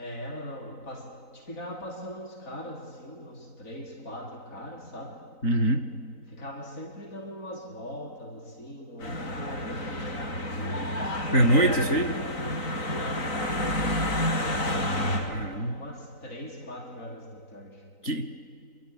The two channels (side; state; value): right; late; 3.9 ms